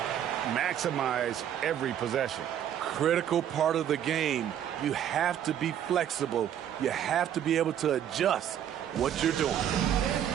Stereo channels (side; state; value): left; quieter; 10.1 dB